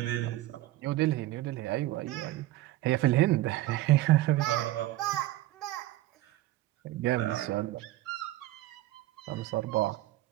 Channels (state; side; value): quieter; left; 16.2 dB